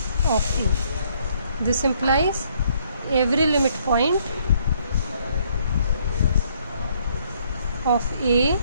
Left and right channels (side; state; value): both; inverted; correlation -0.66